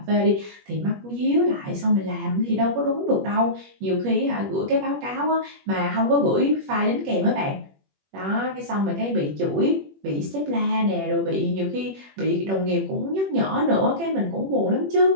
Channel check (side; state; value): left; late; 21 ms